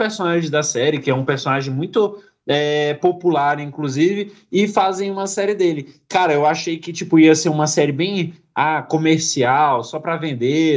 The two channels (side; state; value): both; identical; correlation 1.00